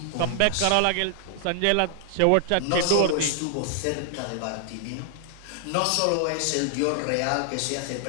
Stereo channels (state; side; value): different; both; correlation 0.00